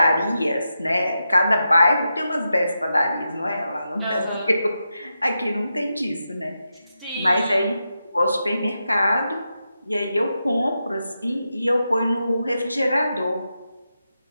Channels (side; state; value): both; inverted; correlation -0.88